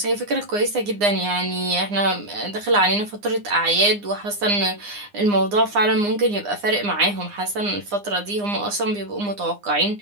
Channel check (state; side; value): late; left; 9.8 ms